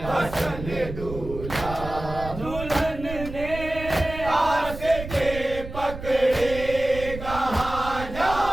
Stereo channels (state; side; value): noise; right; rumble, 10 dB below the sound